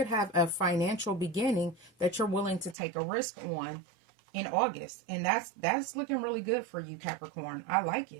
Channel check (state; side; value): drops out; left; at 2.8 s